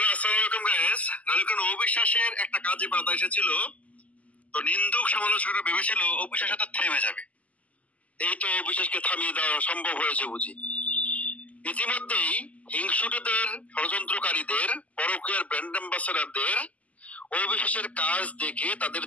আসসালামু আলাইকুম গাইস। নালিকান অবিশ্বাসের একটা কাজে বাধা এসেছিল, তো নিন্দুক সমালোচকরা ভেবেছিল অবিশ্বাস তো থেমে যাবে। এই তো অবিশ্বাসকে থামিয়ে দেওয়া সম্ভব হয়েছে বুঝি। ইতিমধ্যেই হিংসুটেদের, ষড়যন্ত্রকারীদের, পরকীয়ার ব্র্যান্ড অ্যাম্বাসেডরদের অবিশ্বাসের কাজ দেখে তাদের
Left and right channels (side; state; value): right; late; 0.072 ms